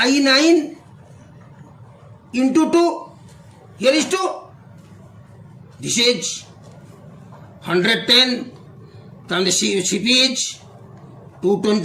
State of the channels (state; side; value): identical; both; correlation 1.00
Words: 9 into 2. Here is 2. This is 110. Then the CP is